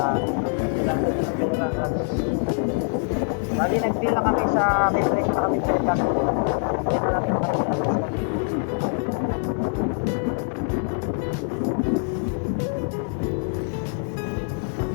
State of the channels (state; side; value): silent; right; 56 dB below the other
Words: bali nag-deal na kami sa may presyo na kami sa ilang kaya natin kami